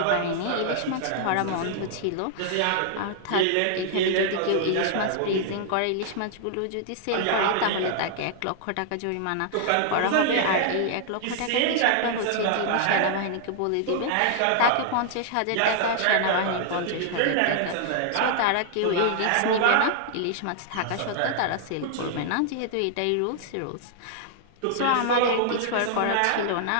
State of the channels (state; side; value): different; both; correlation -0.01